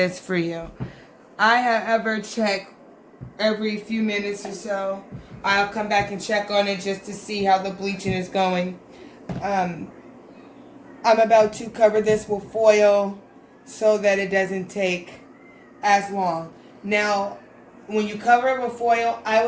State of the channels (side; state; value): both; identical; correlation 1.00